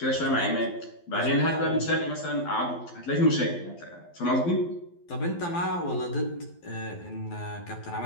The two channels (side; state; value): right; late; 12 ms